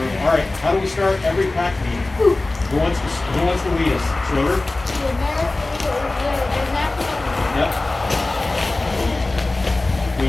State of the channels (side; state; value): right; quieter; 3.0 dB